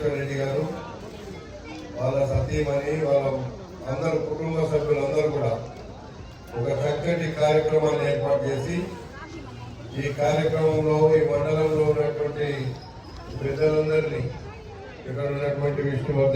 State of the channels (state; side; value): identical; both; correlation 1.00